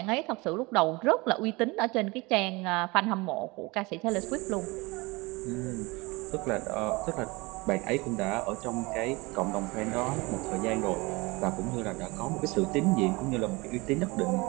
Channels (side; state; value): left; quieter; 24.4 dB